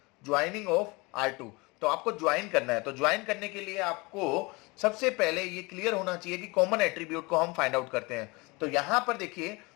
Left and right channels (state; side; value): quieter; right; 25.7 dB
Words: ज्वाइनिंग ऑफ R2, तो आपको ज्वाइन करना है। तो ज्वाइन करने के लिए आपको सबसे पहले ये क्लियर होना चाहिए कि कॉमन एट्रीब्यूट को हम फाइंड आउट करते हैं। तो यहां पर देखिए